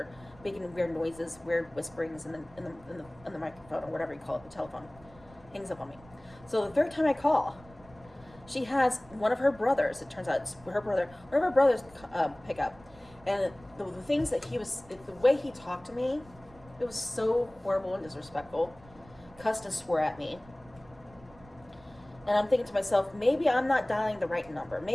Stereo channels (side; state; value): right; noise; rumble, 23 dB below the sound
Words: making weird noises, weird whisperings in the microphone or whatever you call it, the telephone. Hangs up on me. So the third time I call, she has one of her brothers. It turns out it's her brother. One of her brothers pick up, and the things that the way he talked to me, it was so horrible and disrespectful. Cussed and swore at me. And I'm thinking to myself, maybe I'm not dialing the right number.